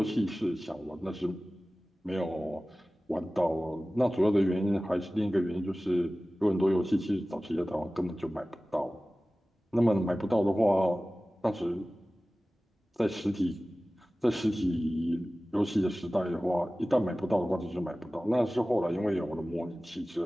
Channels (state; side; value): normal; both; correlation 0.97